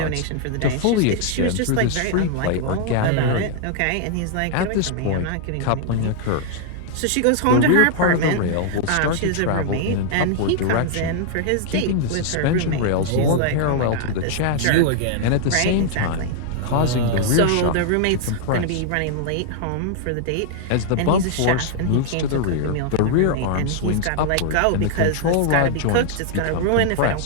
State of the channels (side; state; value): both; different; correlation -0.01